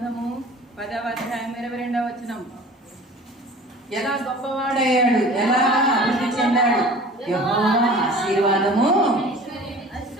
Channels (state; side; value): normal; both; correlation 0.43